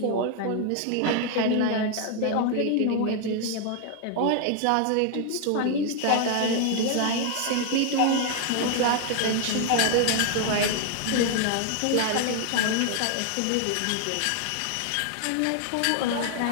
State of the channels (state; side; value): different; both; correlation 0.00